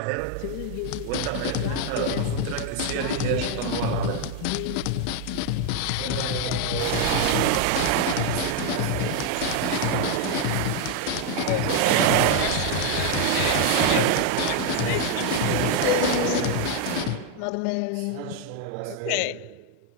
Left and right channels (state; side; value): different; both; correlation 0.01